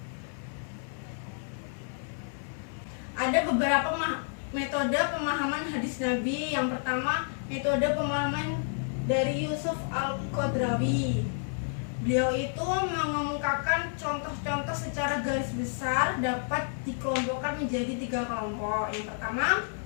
Ada beberapa metode pemahaman hadis Nabi. Yang pertama, metode pemahaman dari Yusuf Al-Qadrawi. Beliau itu mengemukakan contoh-contoh secara garis besar dapat dikelompokkan menjadi 3 kelompok. Yang pertama,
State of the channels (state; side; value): silent; right; digital silence